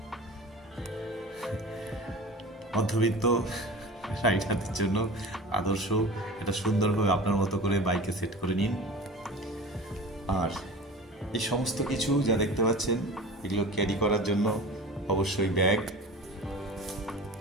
মধ্যবিত্ত রাইডারদের জন্য আদর্শ, এটা সুন্দরভাবে আপনার মতো করে বাইকে সেট করে নিন। আর এই সমস্ত কিছু যা দেখতে পাচ্ছেন এগুলো ক্যারি করার জন্য অবশ্যই ব্যাগ,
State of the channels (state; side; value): normal; both; correlation 0.36